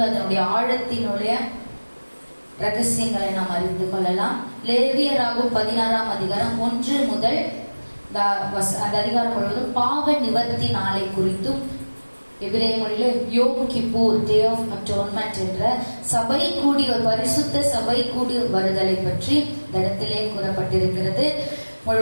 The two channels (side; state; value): both; inverted; correlation -1.00